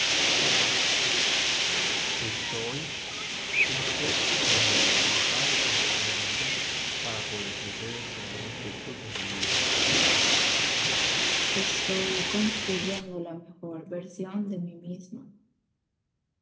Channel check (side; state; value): both; identical; correlation 1.00